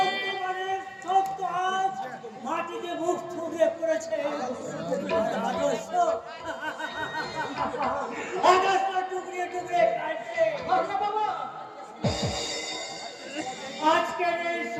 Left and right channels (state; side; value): identical; both; correlation 1.00